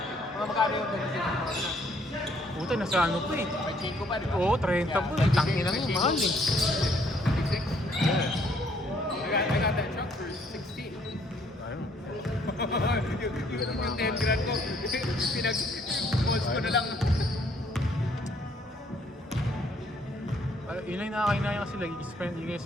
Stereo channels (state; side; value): normal; both; correlation 0.65